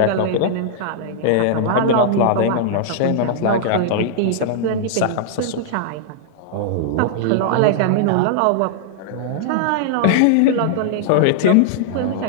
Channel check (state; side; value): different; both; correlation -0.01